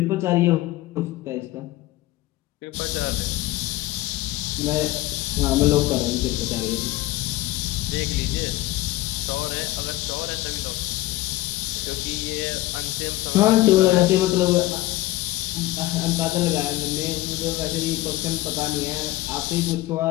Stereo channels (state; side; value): quieter; right; 17.5 dB